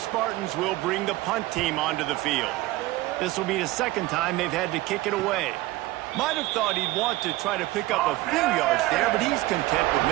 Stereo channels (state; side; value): quieter; left; 18.6 dB